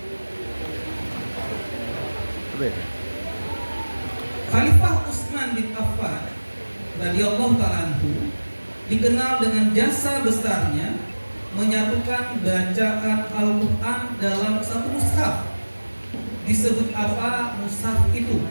Khalifah Utsman bin Affan radhiyallahu ta'ala anhu dikenal dengan jasa besarnya menyatukan bacaan Al-Quran dalam satu mushaf. Disebut apa mushaf itu?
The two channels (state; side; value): inverted; both; correlation -1.00